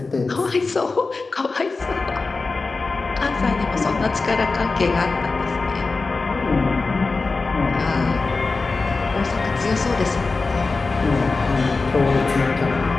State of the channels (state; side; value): quieter; right; 3.9 dB